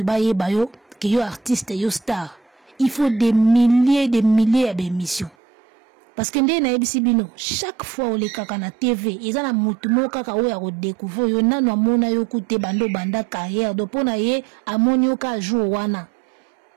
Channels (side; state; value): left; drops out; at 5.4 s